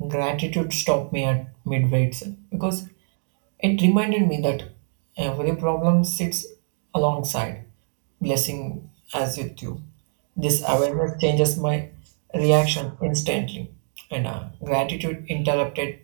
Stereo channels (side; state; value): left; silent; digital silence